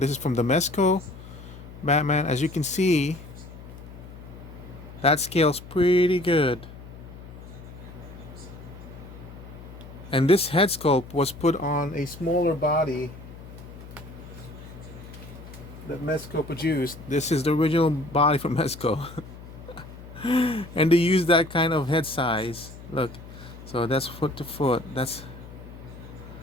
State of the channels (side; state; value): left; noise; hum, 15 dB below the sound